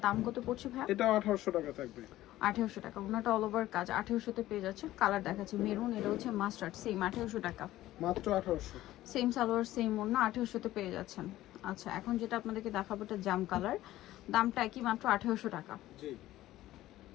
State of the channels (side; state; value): right; quieter; 15.2 dB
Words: দাম কত পড়ছে ভাই? এটা 1800 টাকা থাকবে। 1800 টাকা। ওড়নাটা অল ওভার কাজ, 1800 তে পেয়ে যাচ্ছে। কালার দেখাচ্ছি মেরুন, এটা হচ্ছে মাস্টার্ড, সেম 1800 টাকা। মাত্র 1800। সেম সালোয়ার সেম ওড়না, 1800 তে পেয়ে যাচ্ছেন। আচ্ছা, এখন যেটা আপনাদেরকে দেখাবো এটা জাম কালার, দামটা কি মাত্র 1800 টাকা। জি,